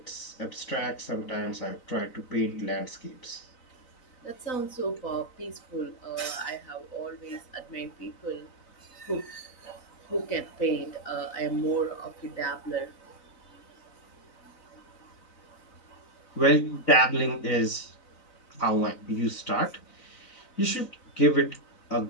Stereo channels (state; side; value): late; right; 4.0 ms